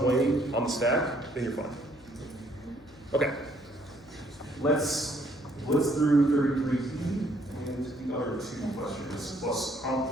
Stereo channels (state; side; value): noise; left; hum, 25 dB below the sound